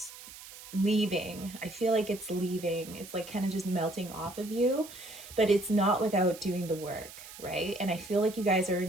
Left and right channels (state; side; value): noise; right; hiss, 16 dB below the sound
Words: leaving. I feel like it's leaving. It's like kind of just melting off of you, but it's not without doing the work, right? And I feel like you guys are